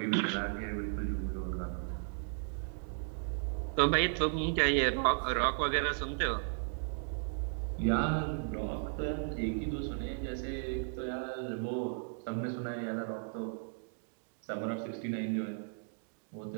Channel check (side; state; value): left; silent; digital silence